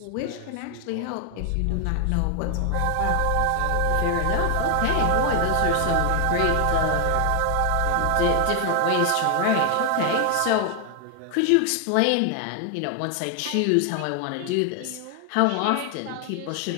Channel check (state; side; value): different; both; correlation 0.00